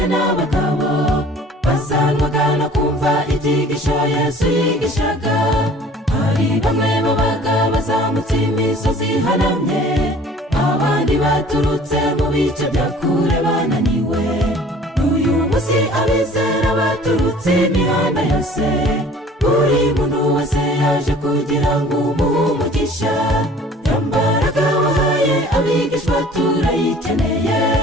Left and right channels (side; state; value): both; normal; correlation 0.49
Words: n'abagabo, basanwaga no kumva ibyigisho Yesu yigishaga. hari bamwe babaga bazamutse imisozi ihanamye, abandi baturutse mu bice bya kure bananiwe. n'uyu munsi abizera baturutse imihanda yose, buri muntu wese yaje kugira ngo umuhe umugisha. yambaraga wahaye abigishwa turayikeneye,